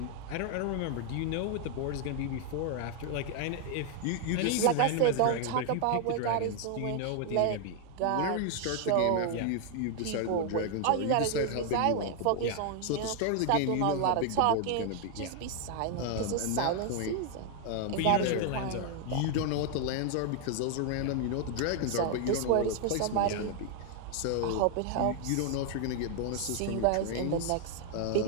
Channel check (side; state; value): both; different; correlation 0.00